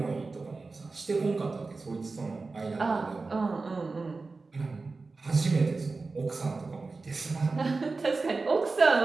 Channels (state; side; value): quieter; left; 3.9 dB